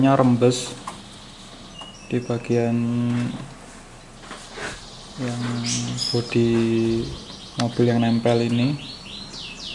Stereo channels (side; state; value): both; identical; correlation 1.00